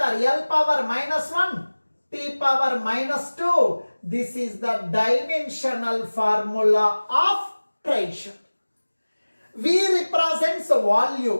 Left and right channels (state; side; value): inverted; both; correlation -1.00